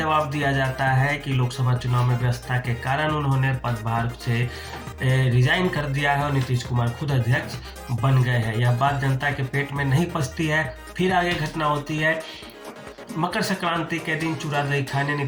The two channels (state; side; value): identical; both; correlation 1.00